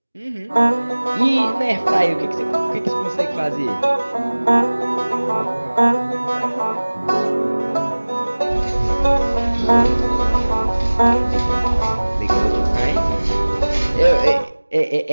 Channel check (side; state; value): both; inverted; correlation -1.00